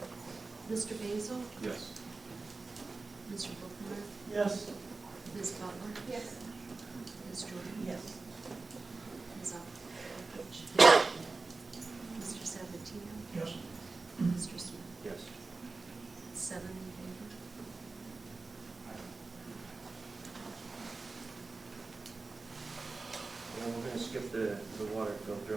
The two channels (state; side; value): quieter; left; 3.7 dB